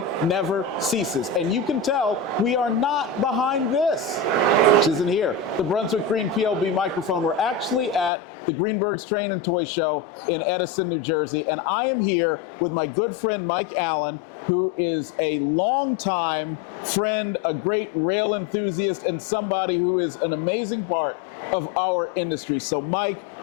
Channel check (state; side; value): drops out; right; at 8.1 s